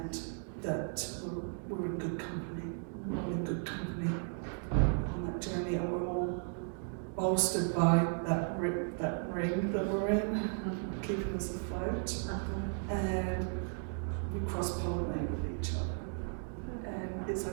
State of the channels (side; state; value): left; silent; 54 dB below the other